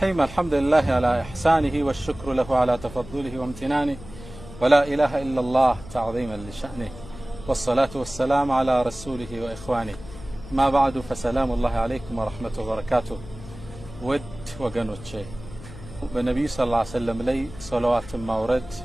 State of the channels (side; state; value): left; noise; hum, 16 dB below the sound